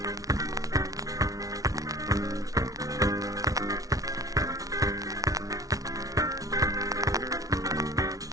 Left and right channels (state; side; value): late; left; 0.18 ms